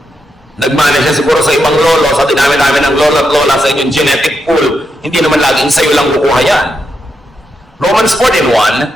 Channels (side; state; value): both; normal; correlation 0.84